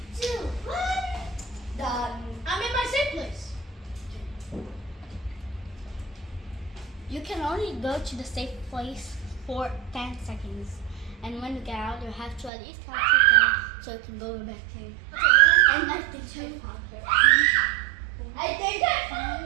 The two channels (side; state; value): left; drops out; at 12.5 s